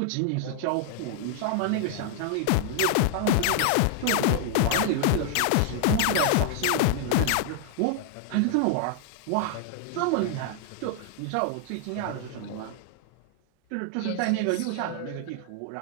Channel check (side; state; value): both; different; correlation 0.00